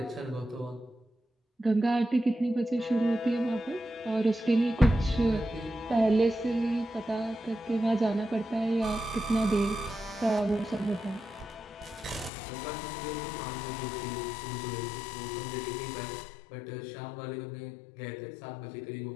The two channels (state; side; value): drops out; right; at 12.3 s